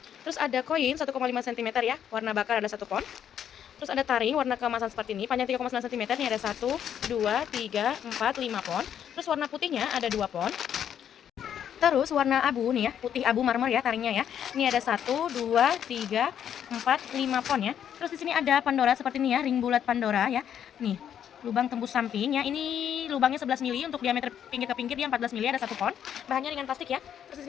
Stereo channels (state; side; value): quieter; right; 9.3 dB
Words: Terus ada koin 1,5 cm ya. Warna bakar ada 1 pon. Terus ada taring warna keemasan seperti ini, panjang 3,9 cm, ini ada 1, 2, 3, 4, 5 pon. Terus warna putihnya ada 2 pon. Terus warna abu nih ya, putih abu marmer ya taringnya ya. Ini ada 1, 2, 3, 4, 5 pon ya. Terus di sini ada Pandora seperti ini ya, ring bulat Pandora ya. Nih, lubang tembus samping ya. Ini lubangnya 11 mili, untuk diameter pinggir ke pinggir dia 14 mili, ada 1 pon. Bahannya ringan plastik ya. Terus di